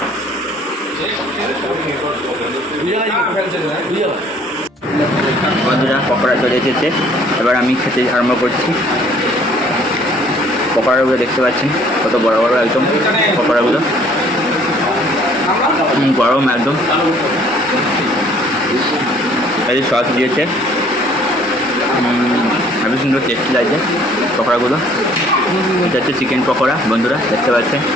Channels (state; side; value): normal; both; correlation 0.58